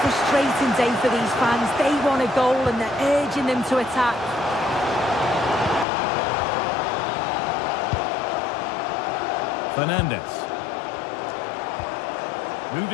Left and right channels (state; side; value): drops out; right; at 5.9 s